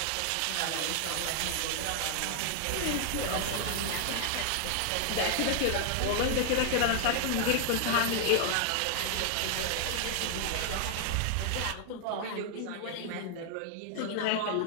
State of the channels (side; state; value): both; different; correlation 0.00